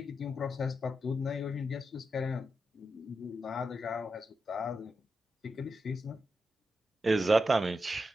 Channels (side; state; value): both; normal; correlation 0.87